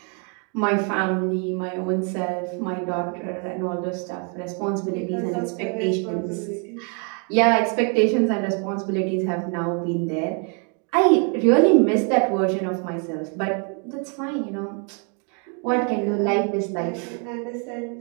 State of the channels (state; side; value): quieter; left; 38.9 dB